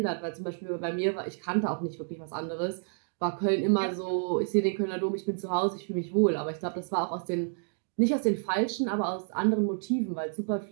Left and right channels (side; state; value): left; silent; digital silence